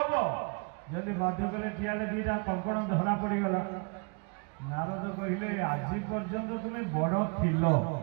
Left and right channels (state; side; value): quieter; left; 33.3 dB